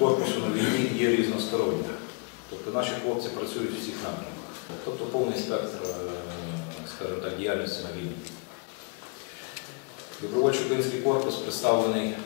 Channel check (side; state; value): right; quieter; 32.1 dB